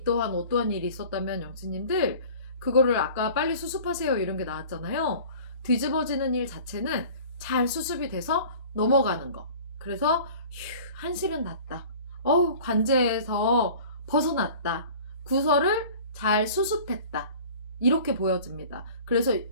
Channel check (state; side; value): inverted; both; correlation -0.44